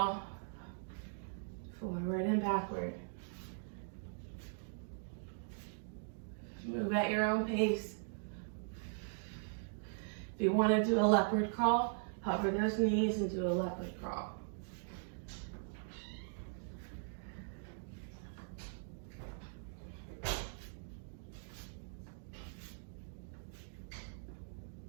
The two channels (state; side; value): silent; left; digital silence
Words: Forward and backward. Move at your own pace. If you want to do a leopard crawl, hover those knees and do a leopard crawl.